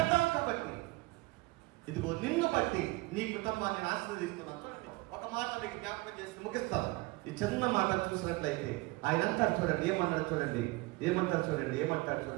కాబట్టి, ఇదిగో నిన్ను బట్టి నీ కుటుంబాన్ని ఆశీర్వదిస్తున్నాను. ఒక మాట మీకు జ్ఞాపకం చేసి ముగిస్తాను. ఈ చిన్న మాట చూసినట్లయితే ఆయన అంటారు చూడండి, ఏమంటారు చూడండి, ఏమంటారు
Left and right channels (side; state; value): left; quieter; 23.0 dB